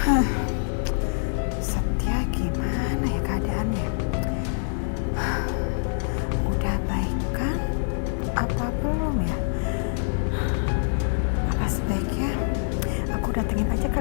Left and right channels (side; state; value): right; silent; 61 dB below the other